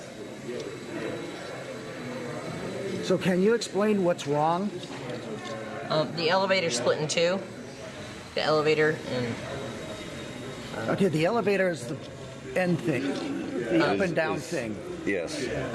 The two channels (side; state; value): both; identical; correlation 1.00